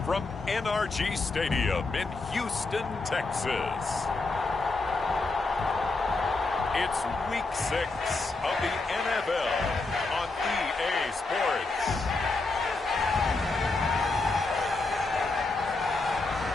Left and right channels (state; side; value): quieter; right; 3.5 dB